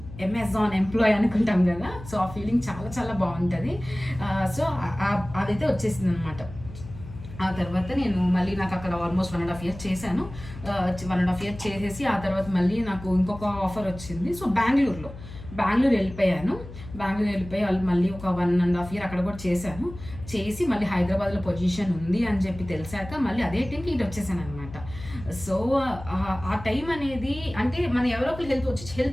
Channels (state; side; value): noise; left; hum, 14 dB below the sound